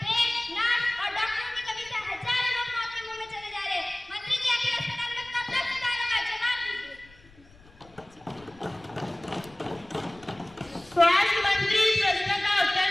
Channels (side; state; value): left; noise; rumble, 26 dB below the sound